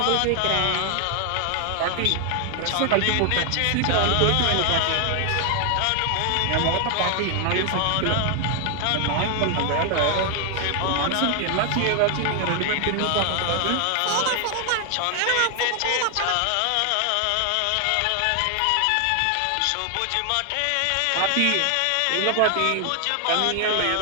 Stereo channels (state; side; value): different; both; correlation 0.00